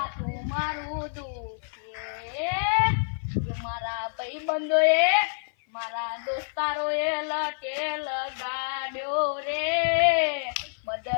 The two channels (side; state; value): right; silent; 55 dB below the other